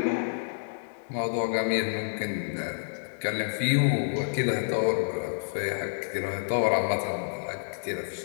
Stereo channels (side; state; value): right; silent; digital silence